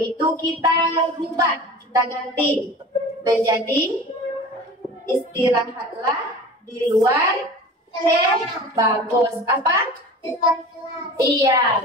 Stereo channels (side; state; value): both; normal; correlation 0.38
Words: itu kita rubah, kita ganti menjadi istirahatlah di luar kelas. Bagus. Apa? Iya.